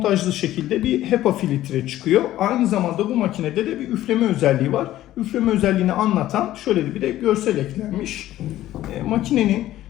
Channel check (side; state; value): right; quieter; 14.1 dB